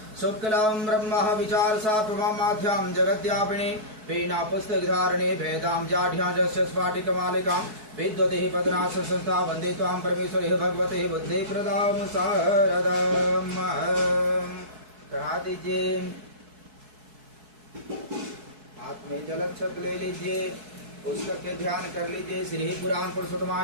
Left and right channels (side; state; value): left; late; 4.6 ms